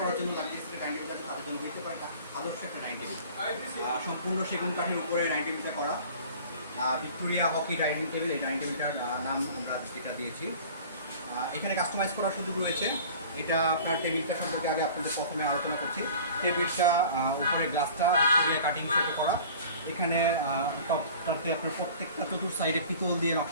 জন্য লাক্সারি ডাইনিং টেবিল তাদের জন্য দিতে পারে আদর্শ একটা ডাইনিং টেবিল। সম্পূর্ণ সেগুন কাঠের উপরে ডাইনিং টেবিলটা করা। ভিক্টোরিয়া হকি ডাইনিং টেবিল, এই ডাইনিং টেবিলটার নাম আমরা যেটা দিয়েছি। এখানে কাস্টমাইজ করার সুযোগ রয়েছে। এটা আপনার টেবিলটা সম্পর্কে আগে আপনাদের প্রথমে আলোচনা করছি। টেবিলটা উপরে গ্লাসটা ভিক্টোরিয়া কাটিং শেপে করা। এখানে টপটাতে আপনার প্রত্যেকটা চতুর সাইডে পিতল দিয়ে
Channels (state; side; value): inverted; both; correlation -0.44